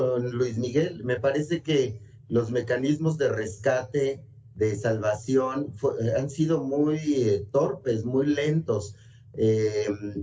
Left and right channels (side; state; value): both; identical; correlation 1.00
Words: Luis Miguel. Me parece que los mecanismos de rescate, de salvación, han sido muy torpes, muy lentos.